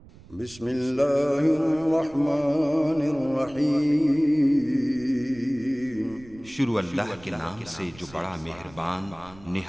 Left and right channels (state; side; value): noise; right; rumble, 22 dB below the sound